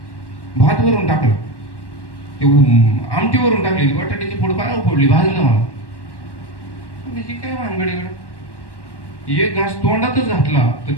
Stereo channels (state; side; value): late; right; 1.1 ms